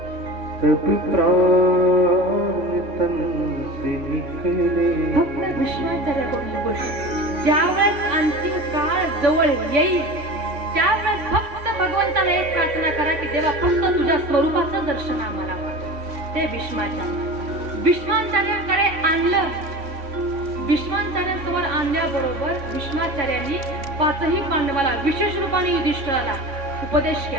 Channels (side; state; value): left; late; 3.5 ms